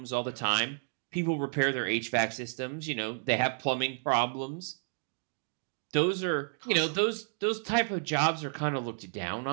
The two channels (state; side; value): silent; left; 57 dB below the other